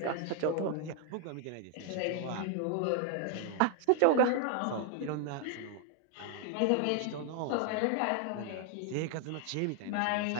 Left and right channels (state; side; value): different; both; correlation 0.00